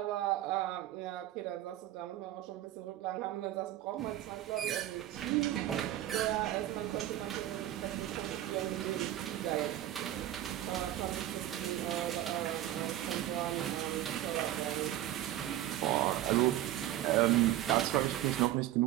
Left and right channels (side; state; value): left; quieter; 13.5 dB